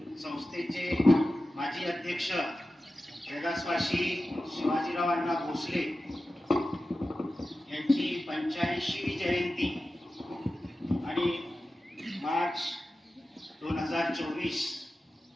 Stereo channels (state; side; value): normal; both; correlation 0.94